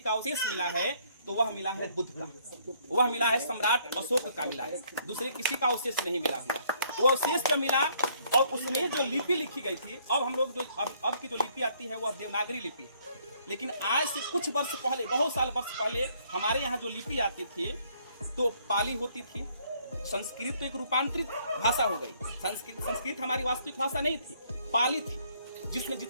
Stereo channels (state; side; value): inverted; both; correlation -0.65